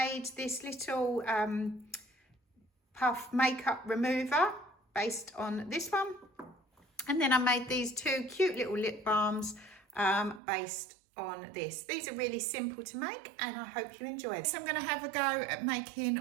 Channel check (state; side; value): drops out; left; at 10.4 s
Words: this little puff makeup remover based on this one, and then I made these two cute little lip balms based on this. These are really simple to make and I hope you enjoy them. So I'm going to have a go at